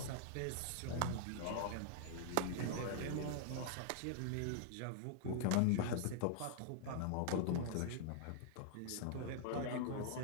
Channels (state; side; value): different; both; correlation -0.01